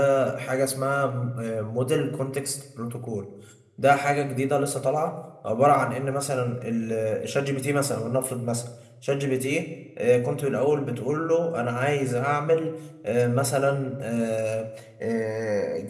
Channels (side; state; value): both; identical; correlation 1.00